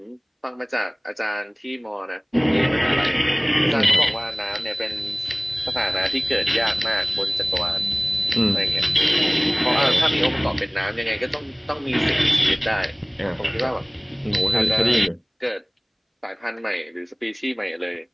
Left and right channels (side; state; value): both; identical; correlation 1.00